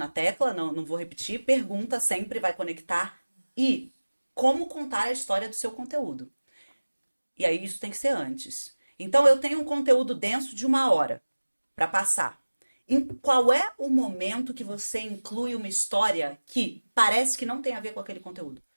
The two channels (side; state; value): both; inverted; correlation -1.00